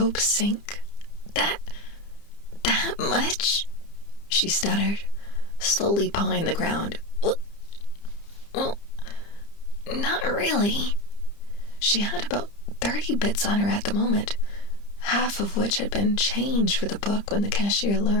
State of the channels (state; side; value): late; right; 30 ms